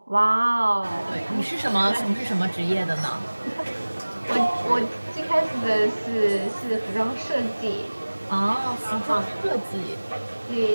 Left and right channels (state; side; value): inverted; both; correlation -1.00